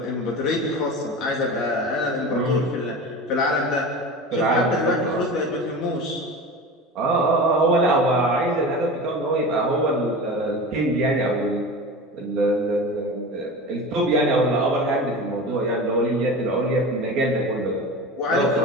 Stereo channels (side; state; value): both; normal; correlation 0.31